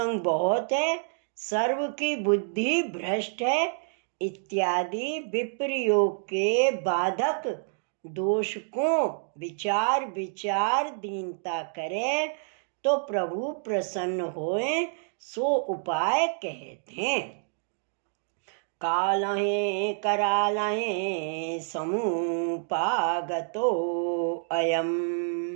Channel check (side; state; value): left; silent; digital silence